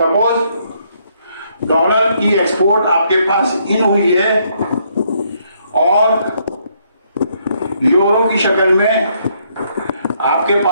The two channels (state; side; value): inverted; both; correlation -0.71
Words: डॉलर की एक्सपोर्ट आपके पास इन हुई है और यूरो की शक्ल में आपके